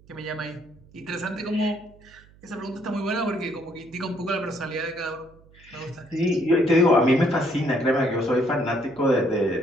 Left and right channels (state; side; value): noise; right; hum, 26 dB below the sound